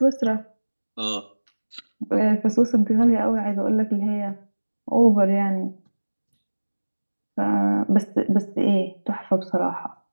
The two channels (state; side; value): inverted; both; correlation -1.00